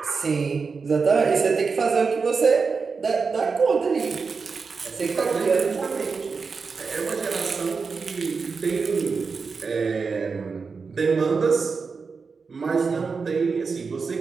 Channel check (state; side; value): quieter; left; 5.0 dB